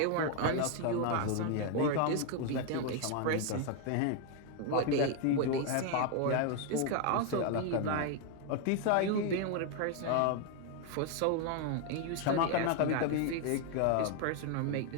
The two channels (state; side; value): different; both; correlation 0.01